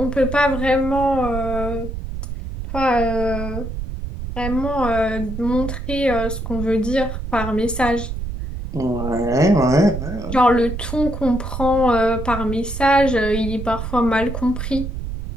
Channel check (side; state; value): right; noise; rumble, 6 dB below the sound